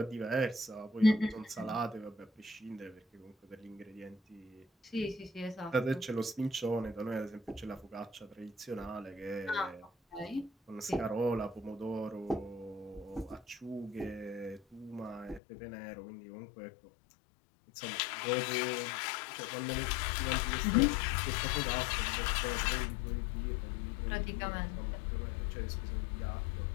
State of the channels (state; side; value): drops out; right; at 15.4 s